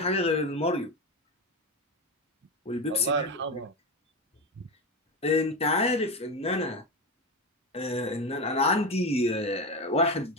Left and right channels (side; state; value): both; normal; correlation 0.17